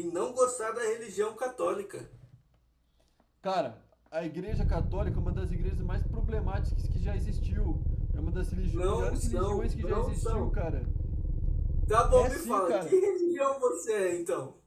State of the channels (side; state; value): both; identical; correlation 1.00